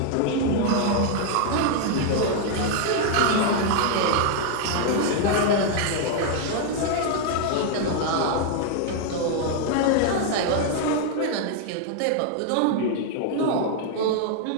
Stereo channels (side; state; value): both; different; correlation 0.00